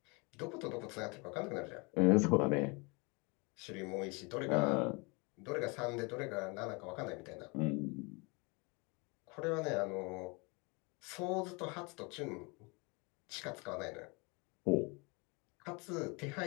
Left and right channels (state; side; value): quieter; right; 29.3 dB